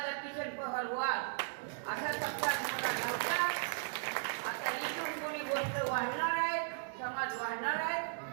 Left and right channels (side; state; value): left; silent; digital silence